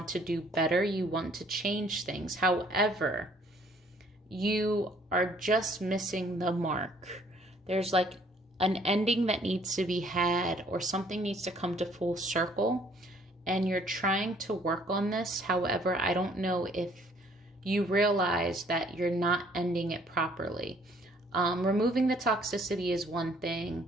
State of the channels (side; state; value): both; normal; correlation 0.61